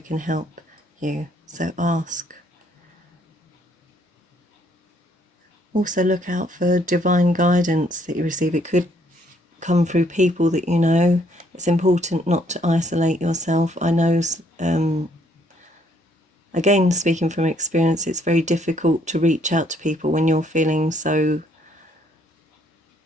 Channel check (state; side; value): normal; both; correlation 0.67